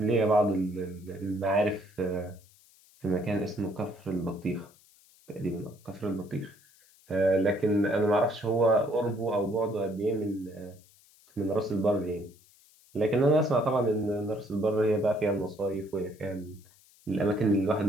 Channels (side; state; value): left; noise; hiss, 28 dB below the sound